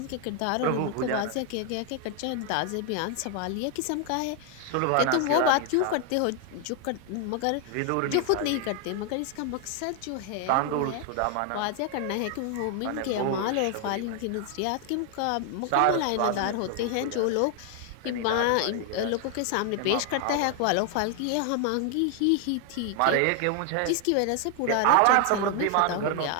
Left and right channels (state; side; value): different; both; correlation 0.00